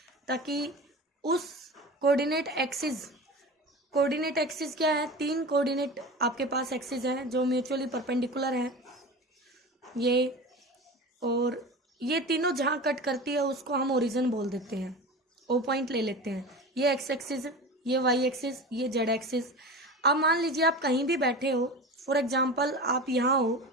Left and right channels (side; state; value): both; normal; correlation 0.31